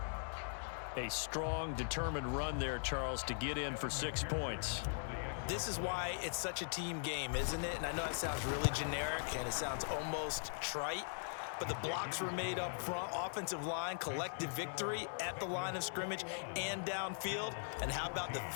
A strong, determined run there, Charles, to get in for 6 points. This is why it's such a team game, isn't it? And I know it sounds really generic, and it sounds almost trite, but the blocks were made up front, offensive line, collective victory at the line of scrimmage and downfield. And how about the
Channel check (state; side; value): silent; right; digital silence